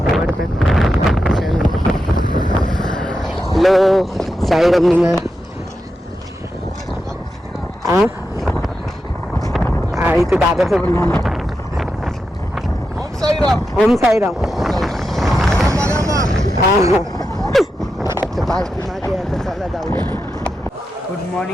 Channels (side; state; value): both; normal; correlation 0.88